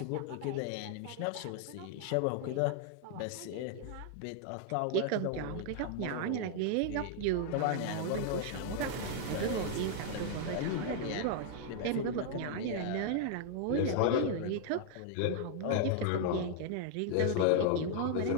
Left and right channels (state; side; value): different; both; correlation 0.00